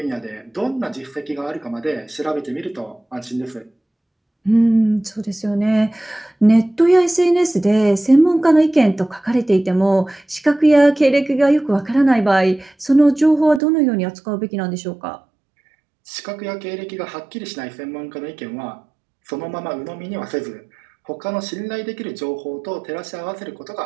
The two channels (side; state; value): left; drops out; at 13.6 s